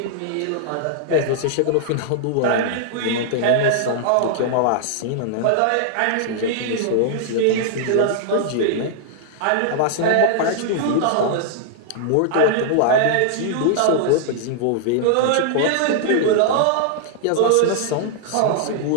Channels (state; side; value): different; both; correlation -0.01